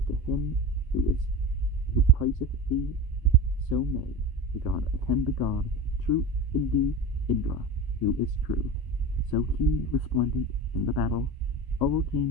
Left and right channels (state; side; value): late; right; 1.0 ms